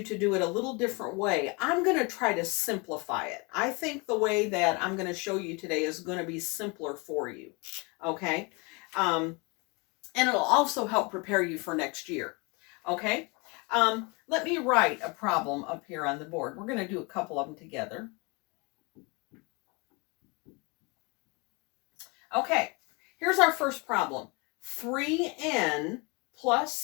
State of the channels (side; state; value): right; quieter; 29.0 dB